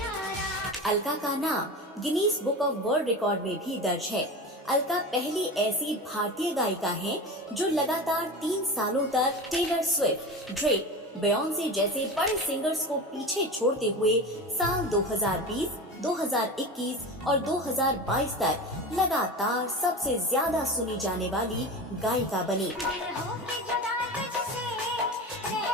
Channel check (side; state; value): both; normal; correlation 0.28